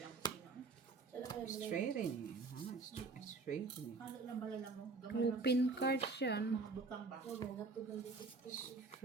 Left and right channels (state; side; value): quieter; left; 4.0 dB